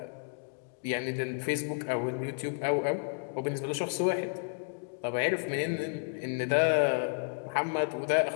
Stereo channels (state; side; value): silent; right; digital silence